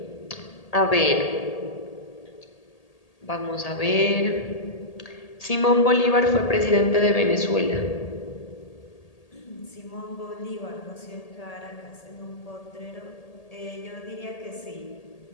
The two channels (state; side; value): late; right; 1.8 ms